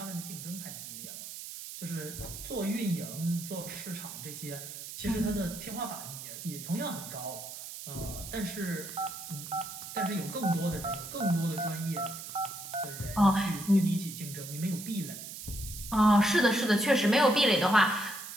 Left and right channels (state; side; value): noise; right; hiss, 10 dB below the sound